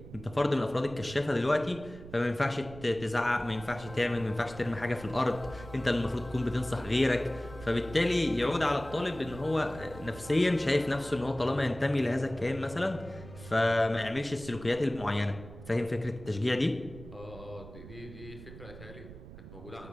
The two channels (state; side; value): noise; right; rumble, 15 dB below the sound